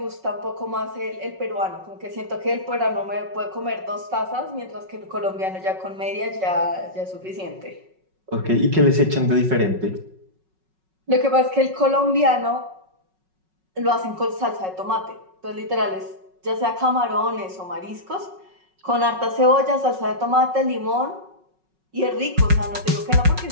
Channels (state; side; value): late; left; 5.4 ms